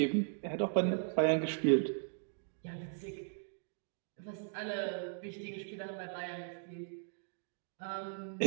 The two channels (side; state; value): left; silent; digital silence